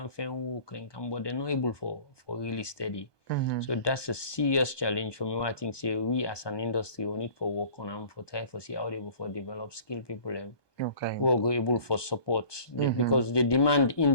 find work and can but they're not able for really steady. So that's a serious challenge for me. I think say we as an industry we need for work on them for try for see how they able for develop skilled people who are able for support because the demand in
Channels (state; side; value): late; right; 1.2 ms